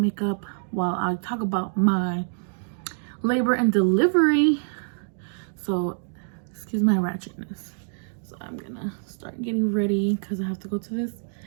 while I talk about my labor and delivery. So excuse my ratchetness. So I'm gonna start getting ready because I have to go to this.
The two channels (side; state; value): left; silent; digital silence